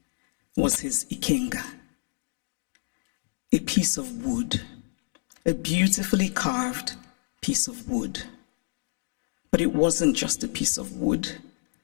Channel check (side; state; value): right; silent; digital silence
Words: was his ikenga, a piece of wood, a beautifully carved piece of wood. But it wasn't just a piece of wood.